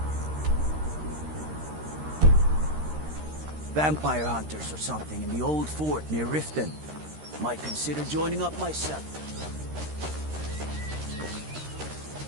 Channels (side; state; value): left; late; 13 ms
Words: Vampire hunters or something in the old fort near Riften. Might consider joining up myself.